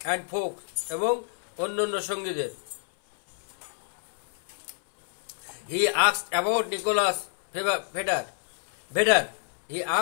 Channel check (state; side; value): silent; right; 58 dB below the other